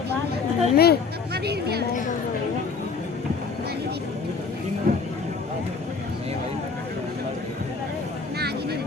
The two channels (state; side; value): quieter; right; 4.8 dB